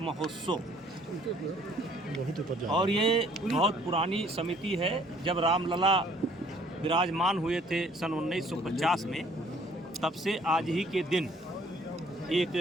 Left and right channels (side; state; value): both; normal; correlation 0.59